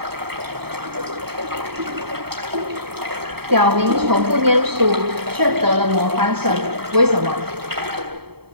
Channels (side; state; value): left; late; 0.96 ms